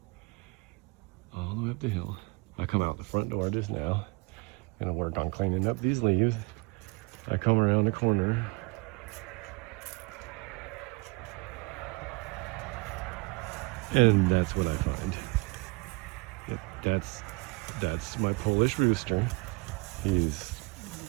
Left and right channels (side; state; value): left; quieter; 25.2 dB